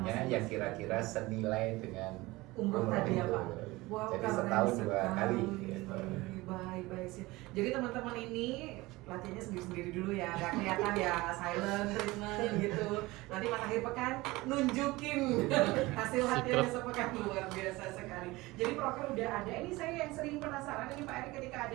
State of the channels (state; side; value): quieter; left; 20.7 dB